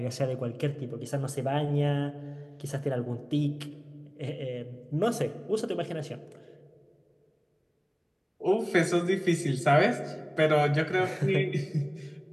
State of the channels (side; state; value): both; identical; correlation 1.00